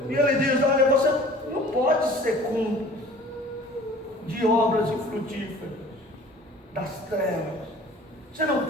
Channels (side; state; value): both; normal; correlation 0.47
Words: E ele diz: olha, você não pode ser cúmplice de obras infrutíferas das trevas. Você não